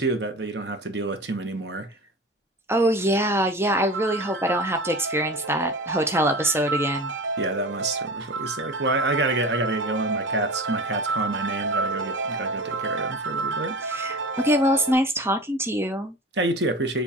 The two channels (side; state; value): both; normal; correlation 0.33